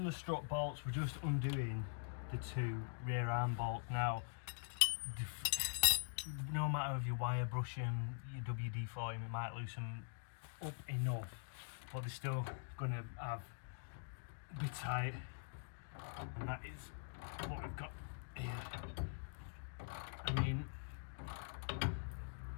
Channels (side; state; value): right; silent; digital silence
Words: the strut bolts, we're just undoing the two rear arm bolts. Now, no matter if you wire brush them, you WD-40 them, it might loosen up enough, but they're still going to have a bit tight, and that is what we've got here. I mean,